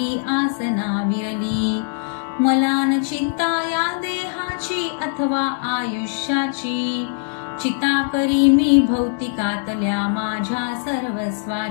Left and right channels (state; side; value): silent; right; 65 dB below the other